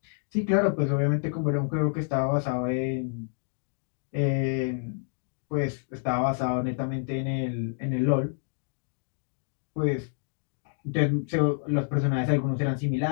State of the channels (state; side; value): silent; right; digital silence